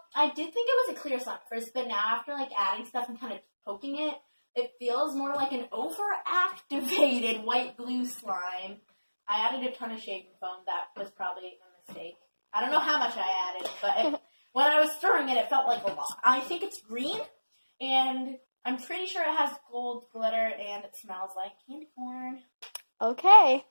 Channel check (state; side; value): inverted; both; correlation -1.00